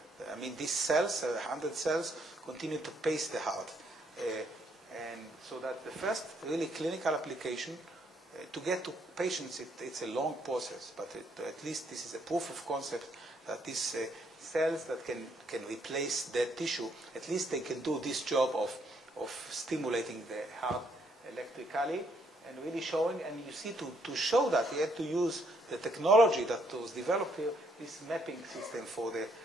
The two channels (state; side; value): normal; both; correlation 0.71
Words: I mean, these cells, 100 cells, continue to pace the heart. And so that's the first really clinical application. To get to patients, it's a long process, but at least this is a proof of concept that these cells that can replace dead tissue, at least they can do this job of stimulating the heart electrically and really showing. And you see, to show that, you had to use the technology that was developed here, this mapping system for